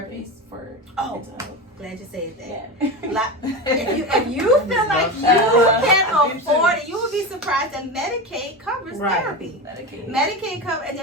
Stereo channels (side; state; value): both; normal; correlation 0.22